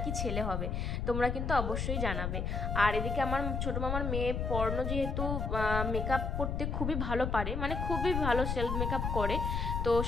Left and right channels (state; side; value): noise; left; rumble, 1 dB below the sound